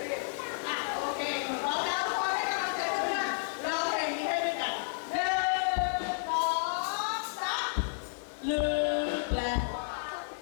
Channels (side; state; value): right; silent; 57 dB below the other